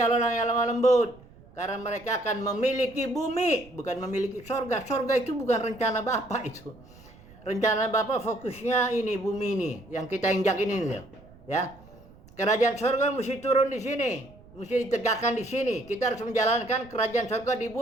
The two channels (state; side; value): noise; right; rumble, 23 dB below the sound